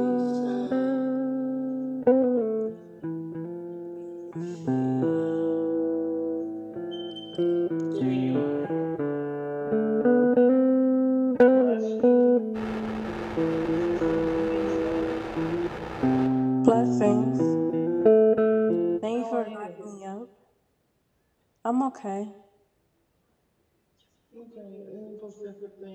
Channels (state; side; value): identical; both; correlation 1.00